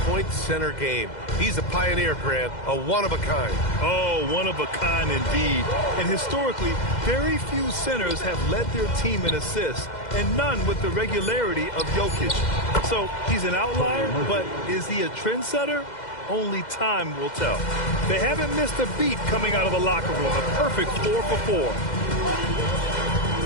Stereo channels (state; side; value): late; right; 2.0 ms